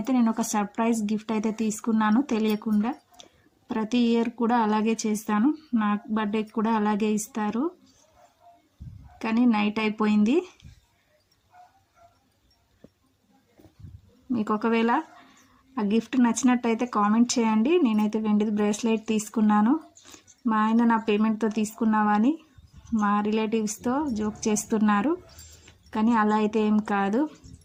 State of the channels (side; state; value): both; identical; correlation 1.00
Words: నేను ఒక సర్ప్రైజ్ గిఫ్ట్ అయితే తీసుకున్నాను తెలియకుండా. ప్రతి ఇయర్ కూడా అలాగే చేస్తాను, నా బర్త్డేకి కూడా అలాగే ఇస్తారు. కానీ నైట్ అయిపోయింది. మీకు ఒకవేళ ఆ గిఫ్ట్ నచ్చినట్టయితే కామెంట్ చేయండి. నేనైతే వెండిది బ్రేస్లెట్ తీసుకున్నాను. మా ఆయన నా పేమెంట్తో తీసుకున్నావా అని మా రిలేటివ్స్తో జోక్ చేస్తున్నారు, కానీ అలా అయితే ఏం కాదు.